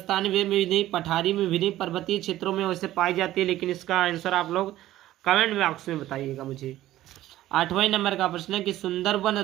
में भी नहीं, पठारी में भी नहीं, पर्वतीय क्षेत्रों में वैसे पाई जाती है। लेकिन इसका आंसर आप लोग कमेंट बॉक्स में बताइएगा मुझे। 8वें नंबर का प्रश्न है कि सुंदरवन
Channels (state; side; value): quieter; left; 14.5 dB